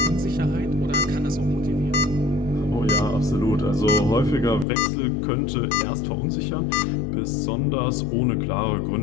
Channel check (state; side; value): drops out; right; at 4.7 s